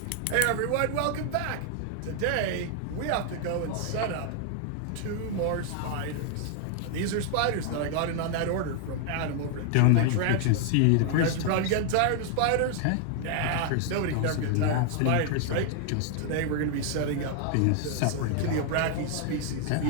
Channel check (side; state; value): both; different; correlation 0.00